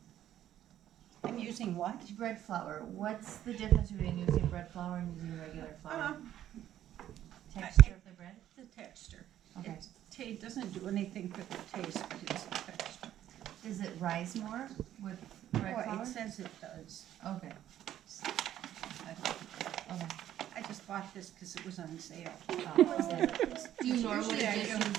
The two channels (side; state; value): left; quieter; 11.8 dB